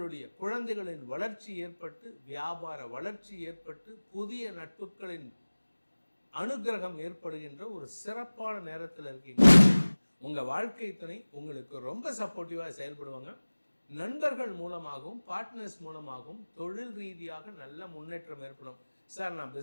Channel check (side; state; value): both; inverted; correlation -1.00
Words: குழந்தைகளின் வளர்ச்சி ஏற்பட்டு, வியாபார வளர்ச்சி ஏற்பட்டு, புதிய நட்புகளின் அனுகிரகம் ஏற்படுகின்ற ஒரு சிறப்பான நேரத்தில் இருக்கீங்க. உங்கள் வாழ்க்கை துணை உங்களுக்கு ரொம்ப சப்போர்ட்டிவாக செயல்படுவாங்க. நண்பர்கள் மூலமாகவும் பார்ட்னர்ஸ் மூலமாகவும் தொழில் ரீதியாக நல்ல முன்னேற்றம் ஏற்படும். சார் நான்